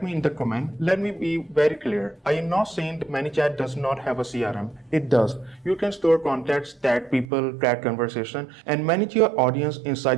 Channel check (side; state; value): left; drops out; at 7.2 s